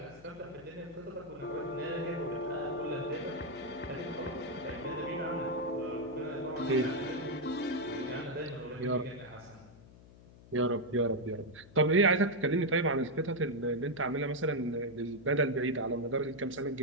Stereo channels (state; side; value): noise; left; hum, 21 dB below the sound